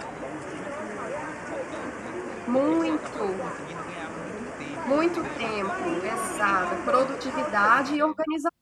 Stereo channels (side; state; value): both; identical; correlation 1.00